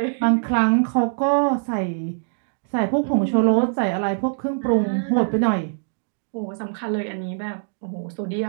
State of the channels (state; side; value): silent; left; digital silence